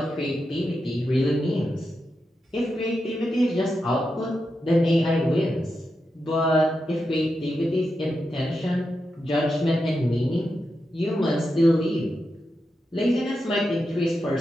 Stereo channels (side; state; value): both; normal; correlation 0.88